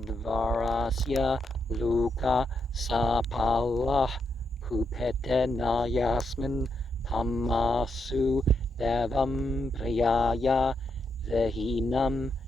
luka sapalah kupetena yasmin tamasu devam priyaya vehinam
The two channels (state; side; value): normal; both; correlation 0.80